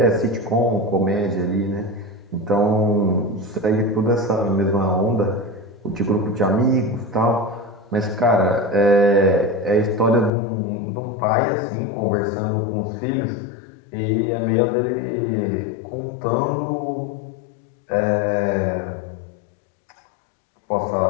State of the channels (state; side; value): drops out; right; at 10.3 s